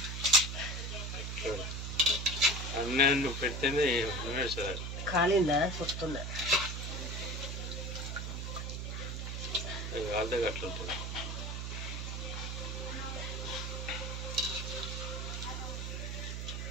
పెడితేనే కాలిందా వస్తుందా? అట్లా ఉంటుంది.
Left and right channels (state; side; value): noise; right; hum, 4 dB below the sound